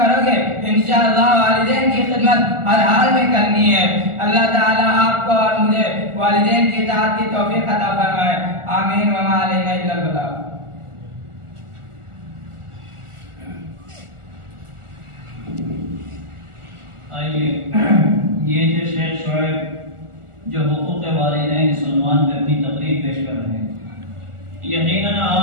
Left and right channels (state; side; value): late; left; 1.4 ms